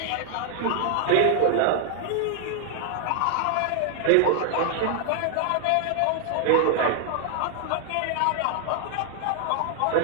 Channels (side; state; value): both; different; correlation 0.00